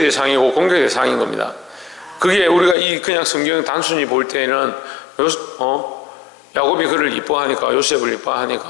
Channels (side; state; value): right; drops out; at 2.8 s